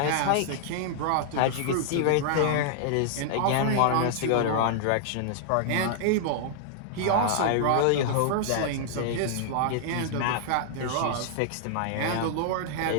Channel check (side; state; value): both; different; correlation -0.01